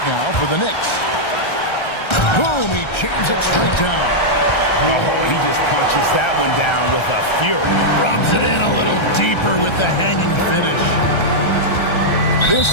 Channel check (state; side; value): late; right; 1.3 ms